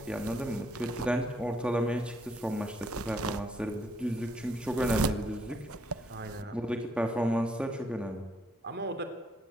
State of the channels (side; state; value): both; normal; correlation 0.71